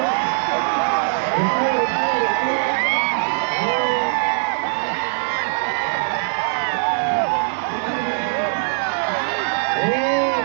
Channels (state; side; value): silent; left; digital silence